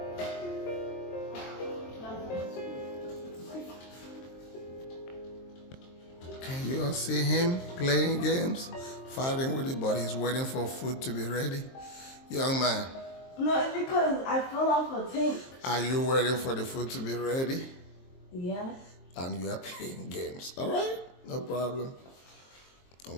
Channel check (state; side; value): late; right; 23 ms